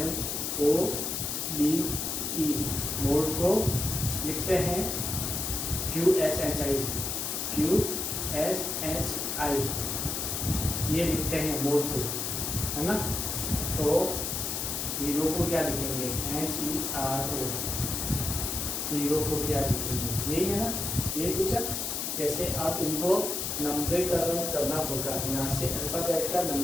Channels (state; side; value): noise; left; hiss, 2 dB below the sound